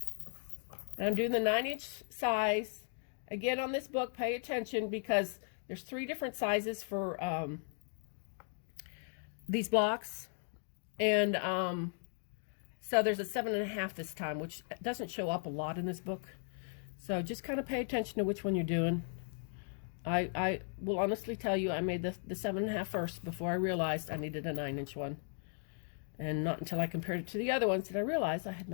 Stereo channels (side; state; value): right; silent; 53 dB below the other